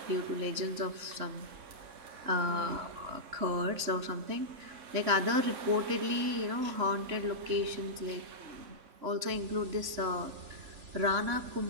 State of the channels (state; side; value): late; left; 3.6 ms